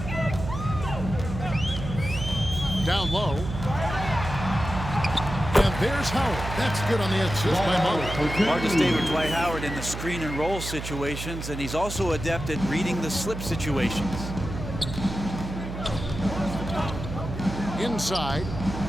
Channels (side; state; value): right; noise; hum, 7 dB below the sound